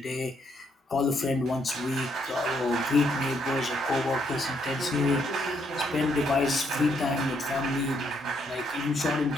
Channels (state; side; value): normal; both; correlation 0.73